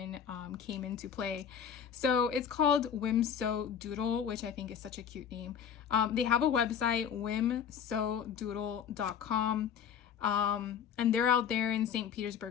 came into play. So it's called Whimsodoodle, which I think is such a cute name. They have a website, whimsodoodle.com, and they're out there in St.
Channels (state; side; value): quieter; right; 8.1 dB